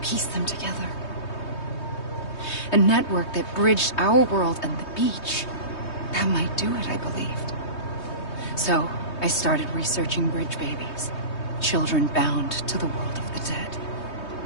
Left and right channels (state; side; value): late; right; 3.2 ms